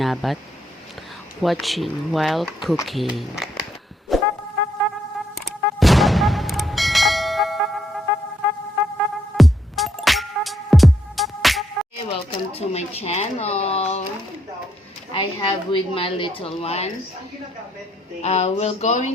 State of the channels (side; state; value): both; normal; correlation 0.75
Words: Watching while cooking. Hey, welcome to my channel. I have with my little one. We're